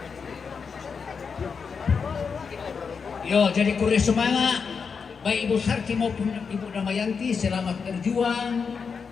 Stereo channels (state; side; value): quieter; right; 5.7 dB